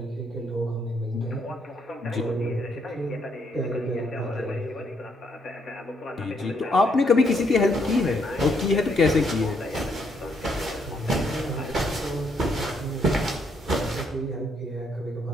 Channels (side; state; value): both; normal; correlation 0.73